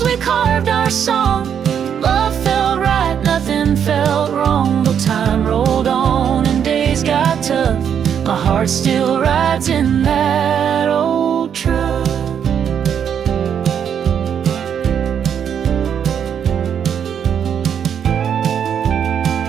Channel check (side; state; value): left; quieter; 8.3 dB